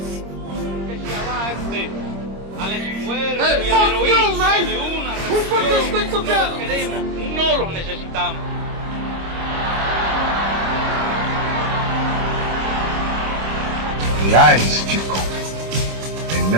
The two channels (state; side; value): late; left; 26 ms